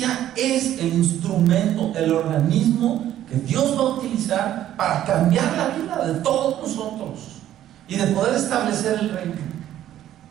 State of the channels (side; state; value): left; quieter; 12.2 dB